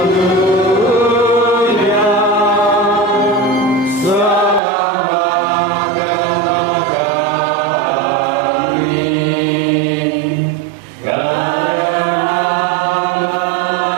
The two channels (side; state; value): left; drops out; at 4.6 s